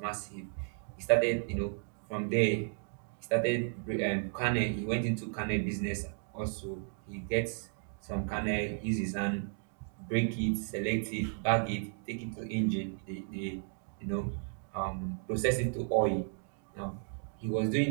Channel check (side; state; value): left; silent; 55 dB below the other